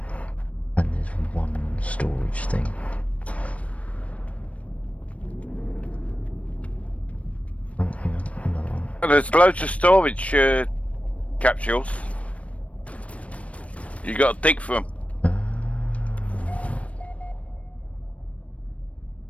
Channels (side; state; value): right; late; 0.064 ms